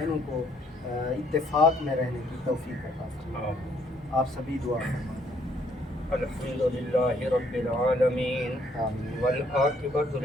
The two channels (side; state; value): both; normal; correlation 0.66